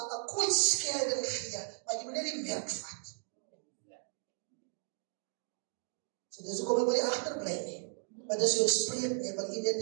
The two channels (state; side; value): silent; left; digital silence